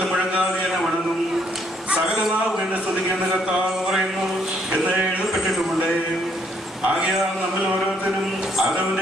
മുഴങ്ങാതെ എന്നെ വണങ്ങും, സകല നാവും എന്നെ സ്തുതിക്കുന്ന കർത്താവ് പറയുന്നു എന്ന് എഴുതപ്പെട്ടിട്ടുമുണ്ട്. ആകയാൽ നമ്മൾ ഓരോരുത്തരും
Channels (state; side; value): normal; both; correlation 0.68